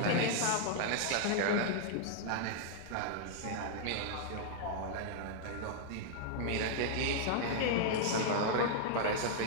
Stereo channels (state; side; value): different; both; correlation -0.01